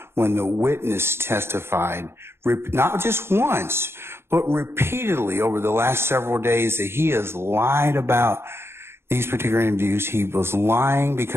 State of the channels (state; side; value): late; left; 0.12 ms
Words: when the witness testified, not just once, but repeatedly over the last several days, that he has lied about these particular interviews? He was lying